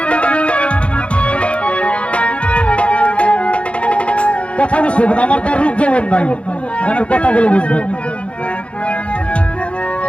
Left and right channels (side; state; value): right; late; 0.061 ms